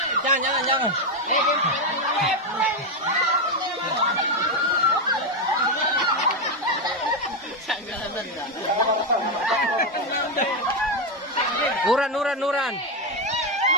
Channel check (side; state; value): both; normal; correlation 0.06